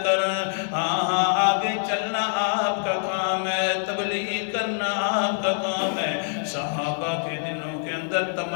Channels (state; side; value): silent; right; digital silence